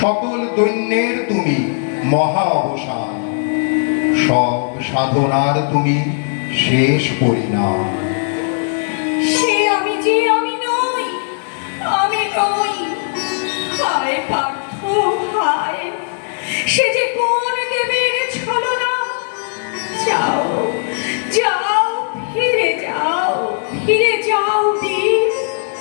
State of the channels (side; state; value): right; silent; 68 dB below the other